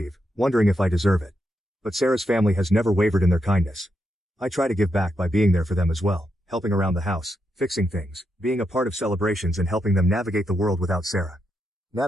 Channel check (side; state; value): both; normal; correlation 0.83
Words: wondering if I deserve it. But Sarah's family has never wavered in their kindness. I try to give back by being there for them as well, helping around the house, fixing things, being a part of celebrations and helping them navigate the world without Sarah.